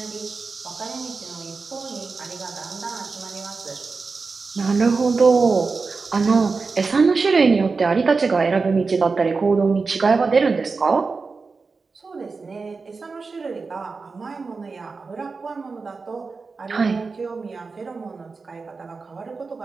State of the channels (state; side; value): quieter; left; 4.4 dB